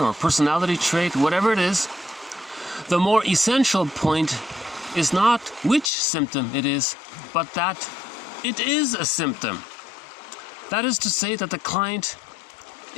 or personality trait, whatever it is, the more essential point is not which symptom it is, but that it is a symptom. That is to say that the client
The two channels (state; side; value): drops out; right; at 5.9 s